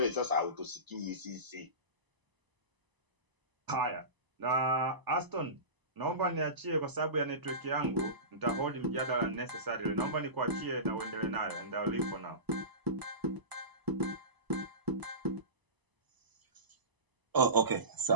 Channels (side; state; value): left; late; 1.0 ms